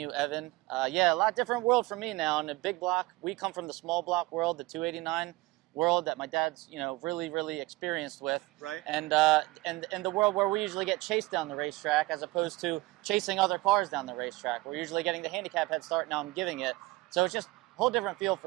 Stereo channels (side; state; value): left; quieter; 21.0 dB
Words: Evan. Yeah, a lot different world for me now. In the big block, we come from the small block world, the 289 world that my dad's, really experienced with. Right. And the world where we usually get chased down the racetrack as opposed to chasing other cars down the racetrack. We're usually getting the handicap head start. Now I'm giving it. So it's just a whole different feel